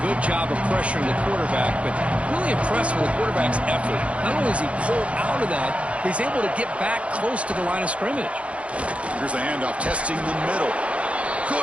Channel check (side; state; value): left; late; 0.062 ms